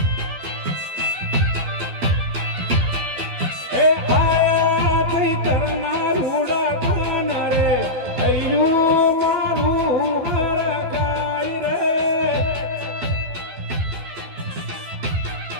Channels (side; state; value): left; late; 12 ms